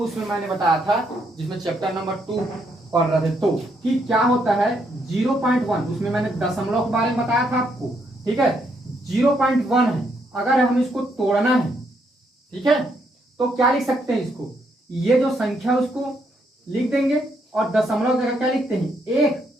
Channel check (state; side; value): normal; both; correlation 0.74